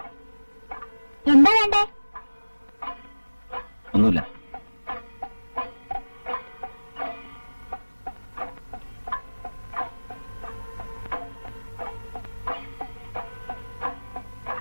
എന്താ വേണ്ടേ? ഒന്നുമില്ല.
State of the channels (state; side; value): inverted; both; correlation -1.00